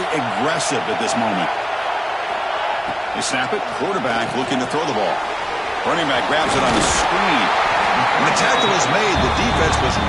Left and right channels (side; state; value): both; identical; correlation 1.00